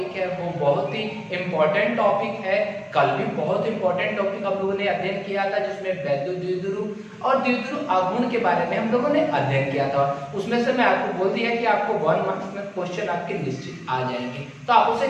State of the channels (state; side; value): identical; both; correlation 1.00